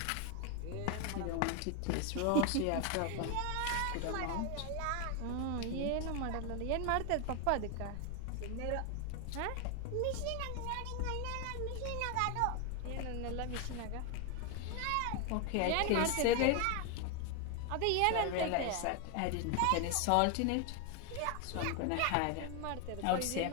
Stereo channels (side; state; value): both; different; correlation 0.01